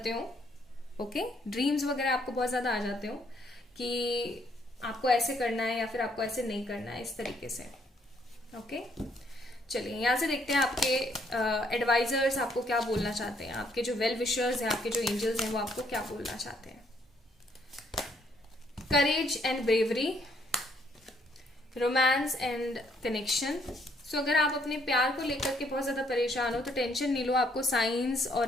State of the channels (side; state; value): both; normal; correlation 0.69